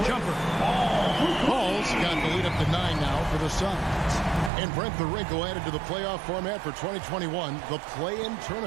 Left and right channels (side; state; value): left; drops out; at 4.5 s